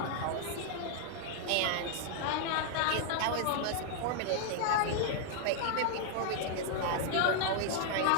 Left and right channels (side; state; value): both; different; correlation 0.00